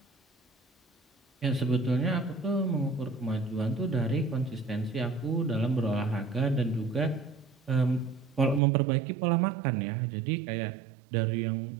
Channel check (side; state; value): left; drops out; at 8.6 s